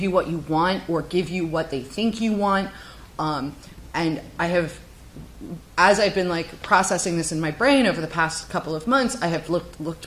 what you want or give you what they think you want. And I have, as I've been like processing this in my brain over the past couple of months, I have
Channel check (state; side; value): identical; both; correlation 1.00